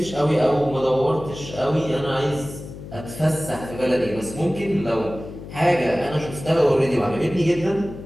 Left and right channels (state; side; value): noise; left; hum, 13 dB below the sound